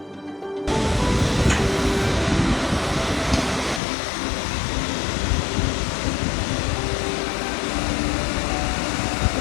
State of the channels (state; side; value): drops out; right; at 3.8 s